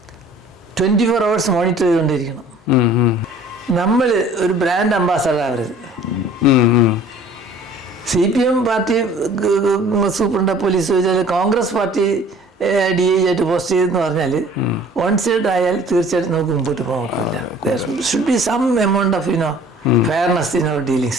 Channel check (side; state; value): both; normal; correlation 0.51